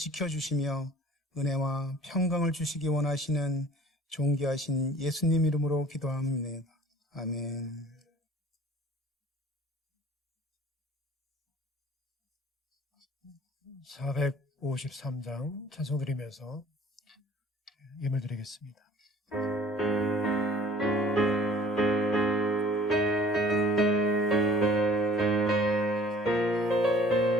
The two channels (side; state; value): both; normal; correlation 0.51